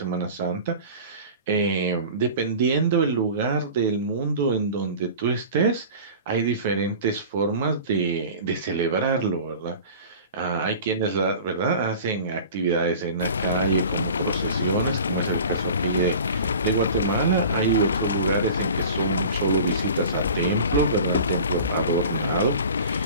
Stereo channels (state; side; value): inverted; both; correlation -0.39